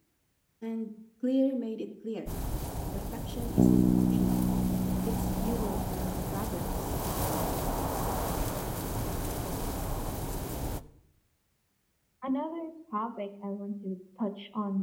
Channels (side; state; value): both; identical; correlation 1.00